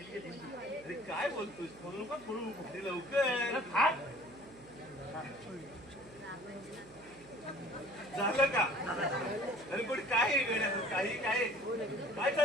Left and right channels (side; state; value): right; noise; hum, 23 dB below the sound